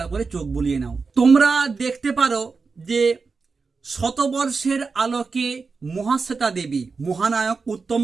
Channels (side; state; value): left; quieter; 4.6 dB